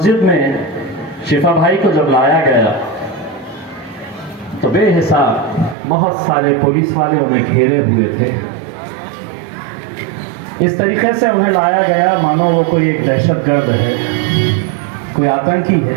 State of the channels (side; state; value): left; drops out; at 5.8 s